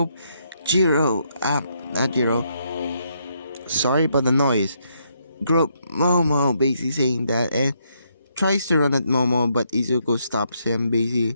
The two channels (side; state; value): both; inverted; correlation -0.75